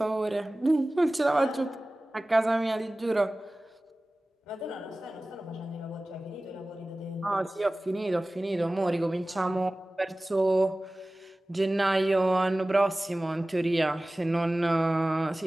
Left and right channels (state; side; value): normal; both; correlation 0.97